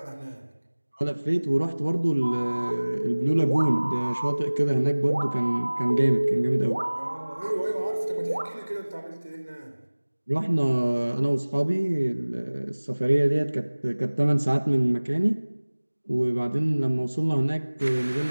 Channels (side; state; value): both; inverted; correlation -1.00